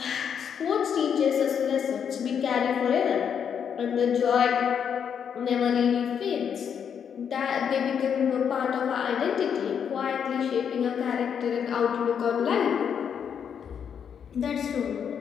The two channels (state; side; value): quieter; right; 7.7 dB